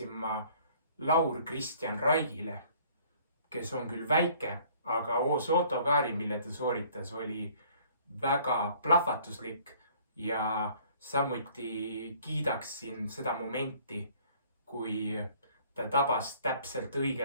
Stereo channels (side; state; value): both; inverted; correlation -0.56